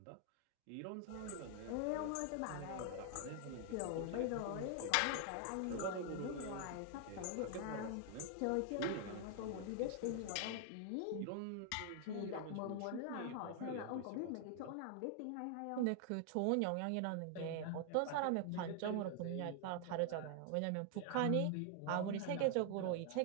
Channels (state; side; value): different; both; correlation 0.00